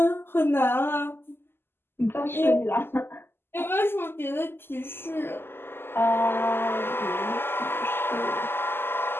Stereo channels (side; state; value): right; late; 0.11 ms